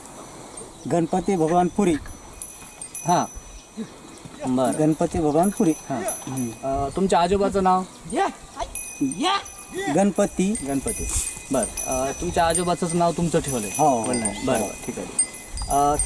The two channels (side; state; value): both; identical; correlation 1.00